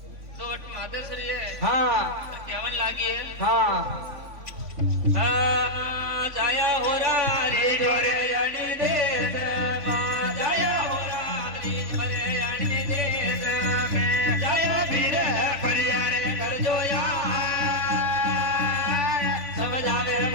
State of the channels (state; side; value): late; left; 3.5 ms